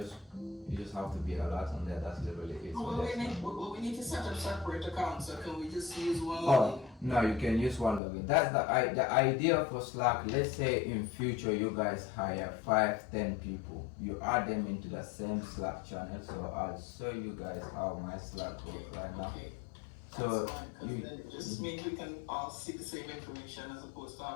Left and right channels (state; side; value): drops out; right; at 8.0 s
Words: just have to be alert on there. That's literally it. So we need to set up separate accounts, so can we just use one oh login? no, you can use one login. That's the idea for Slack. Let's say in future you guys hire 5-10 people, you add them into the same Slack channel. So I'll show you guys how my Slack works right now. Okay. So that's fine, 'cause then it just means we can all see the same information as opposed to